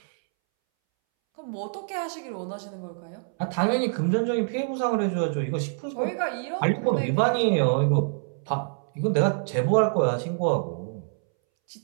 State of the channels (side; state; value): left; silent; 61 dB below the other